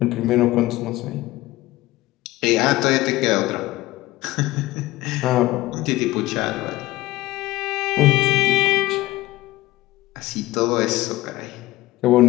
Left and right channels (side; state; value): right; quieter; 17.8 dB